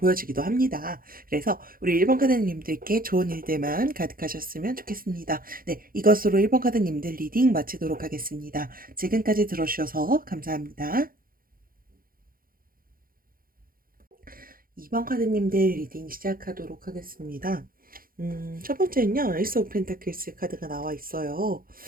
합니다. 그래서 우리 1번 카드님들께 좋은 일들만 가득하셨으면 좋겠습니다. 네, 이것으로 1번 카드님들 리딩 마치도록 하겠습니다. 지금까지 들어주셔서 감사합니다. 2번 카드님들 리딩 시작하도록 하겠습니다. 첫 번째는요, 에이스 오브 펜타클스 카드가 나와 있어요.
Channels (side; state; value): left; late; 0.42 ms